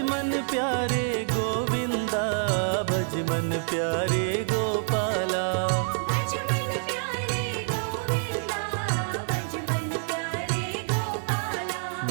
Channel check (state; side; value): silent; left; 57 dB below the other